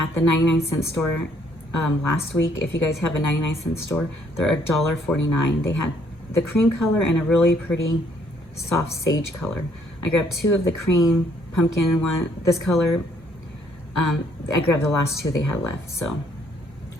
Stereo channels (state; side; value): normal; both; correlation 0.66